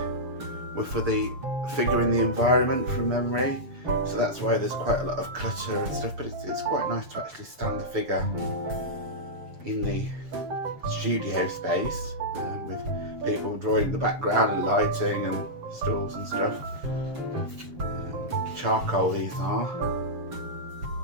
were for the figure in the environment from memory. So that's why there's quite a lot of clutter and stuff, but it's quite nice to actually stand the figure in the studio space with people drawing in the background and lighting and stools and stuff. Charcoal these are.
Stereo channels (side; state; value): left; late; 7.0 ms